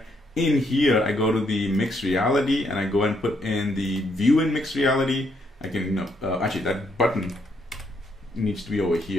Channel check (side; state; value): both; normal; correlation 0.74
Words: In here, I go to the mixed reality and I go and put in the view in mixed reality. I can, actually that button needs to be over